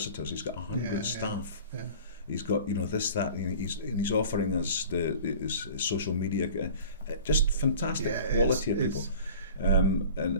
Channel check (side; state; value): both; inverted; correlation -0.43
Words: He's got 100 staff. Yeah. He's got this, that, and he's offering us his social media, just fantastic quality of people,